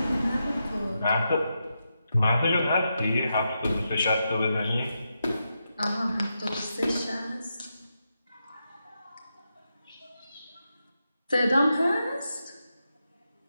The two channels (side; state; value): both; inverted; correlation -0.86